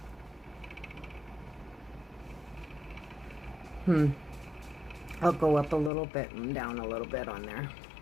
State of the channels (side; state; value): right; drops out; at 5.9 s